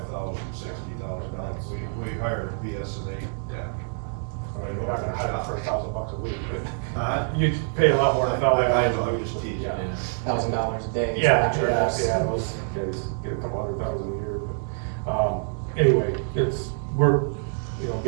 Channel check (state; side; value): silent; left; 61 dB below the other